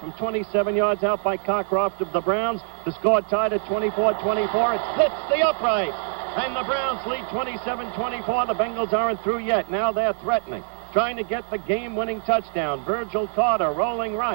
from 27 yards out by Cockcroft of the Browns. The score tied at 24-24. It splits the upright. And the Browns lead 27-24. The Bengals aren't through yet. Now they're threatening, trying to get the game-winning touchdown. Virgil Carter rolling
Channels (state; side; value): silent; left; 60 dB below the other